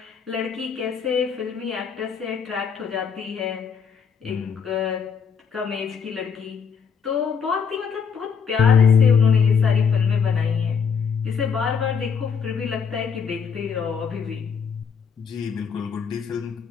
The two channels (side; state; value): right; quieter; 6.4 dB